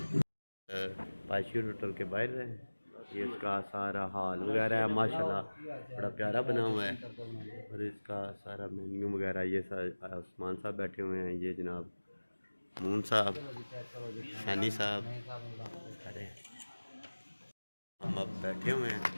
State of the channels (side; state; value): both; inverted; correlation -1.00